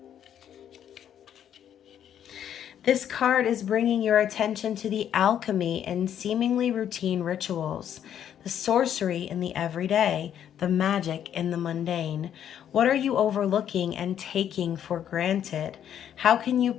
This card is bringing your attention to the alchemy in seemingly routine rituals, the sorcery in the everyday, the magic in the mundane. What are you overlooking and taking for granted? How can you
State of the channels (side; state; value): right; quieter; 9.7 dB